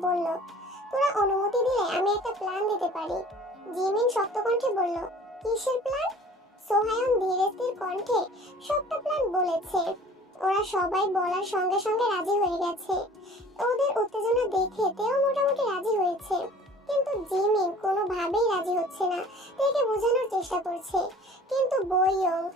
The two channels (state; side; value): normal; both; correlation 0.48